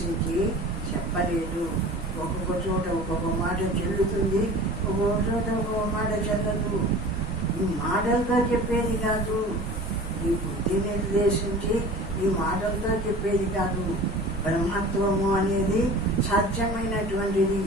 చెప్పలేదు. ఒక్కొక్క చోట ఒక్కొక్క మాట చెల్లుతుంది, ఒక్కొక్క చోట ఒక్కొక్క మాట చెల్లదు. ఈ మాటలతో చెప్పేది కాదు, ఈ బుద్ధి నిర్దేశించి ఈ మాటలతో చెప్పేది కాదు. బ్రహ్మత్వము అనేది సత్యమైనటువంటిది.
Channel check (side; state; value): both; normal; correlation 0.39